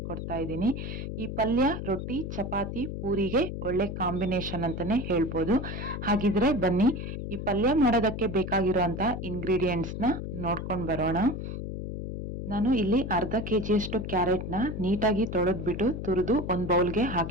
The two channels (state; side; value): noise; left; hum, 6 dB below the sound